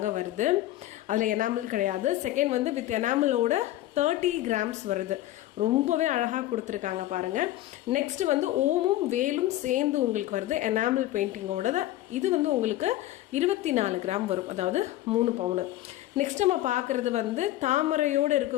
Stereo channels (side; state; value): right; quieter; 14.9 dB